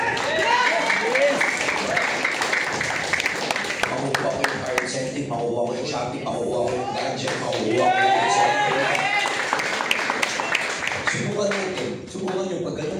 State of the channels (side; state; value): both; identical; correlation 1.00